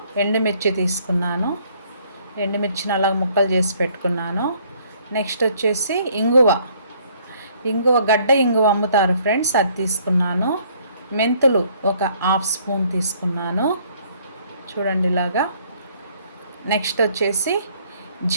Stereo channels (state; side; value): inverted; both; correlation -0.62